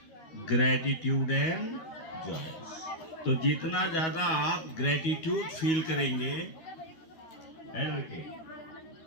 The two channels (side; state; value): right; late; 12 ms